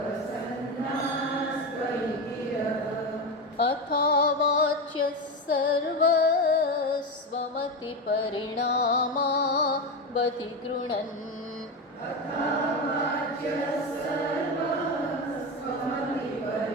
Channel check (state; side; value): normal; both; correlation 0.17